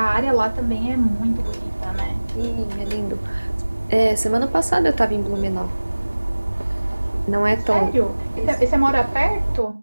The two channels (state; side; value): inverted; both; correlation -1.00